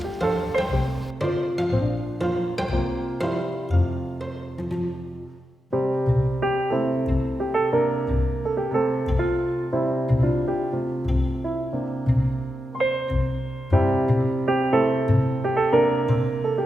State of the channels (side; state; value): both; normal; correlation 0.89